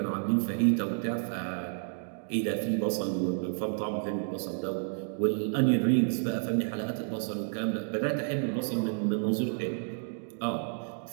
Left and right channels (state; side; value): silent; left; digital silence